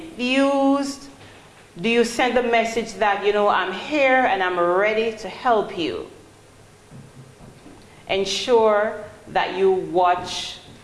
Do you send the message that, I'm here and I'm ready to help you? Ensure that you watch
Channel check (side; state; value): both; identical; correlation 1.00